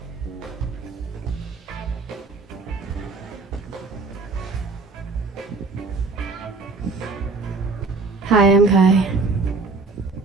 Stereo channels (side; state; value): left; quieter; 4.0 dB